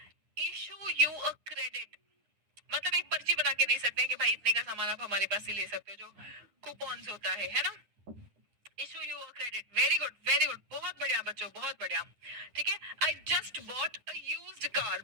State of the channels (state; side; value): late; left; 9.8 ms